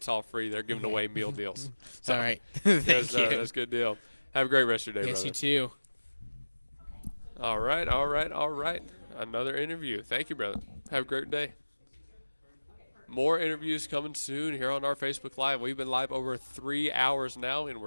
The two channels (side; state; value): both; inverted; correlation -1.00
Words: all free. They're giving away meal deals. All right. Thank yes, you. That's a good deal. Have a great rest of your day, Yes, brother. you too. All right. Another interview. Thank you, brother. Have a great day. More interviews coming soon here on our Facebook Live. We've been live over 3 hours now, and